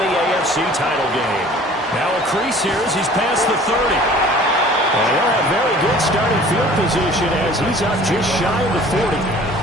AFC title game. Now a crease here as he's past the 30. And he'll have very good starting field position as he's up just shy of the 40.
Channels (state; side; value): normal; both; correlation 0.48